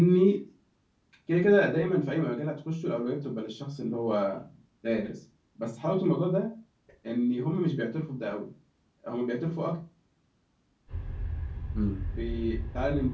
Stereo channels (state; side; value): identical; both; correlation 1.00